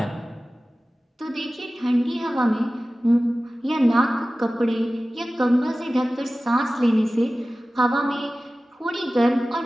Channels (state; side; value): normal; both; correlation 0.96